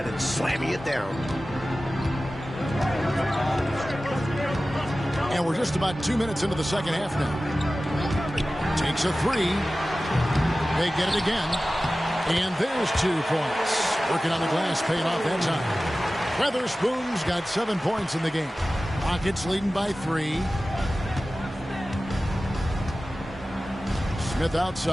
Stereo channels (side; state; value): both; normal; correlation 0.96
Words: and slamming it down. And we're just about 2 minutes into the second half now. Takes a three. They get it again. And there's 2 points. Working on the glass, paying off that time. Weatherspoon's got 7 points in the game. Rockets leading by 3. Smith